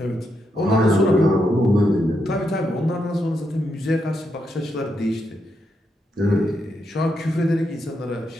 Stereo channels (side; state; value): both; normal; correlation 0.81